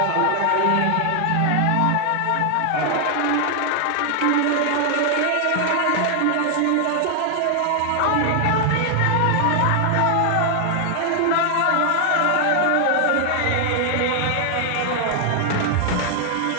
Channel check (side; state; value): both; different; correlation 0.00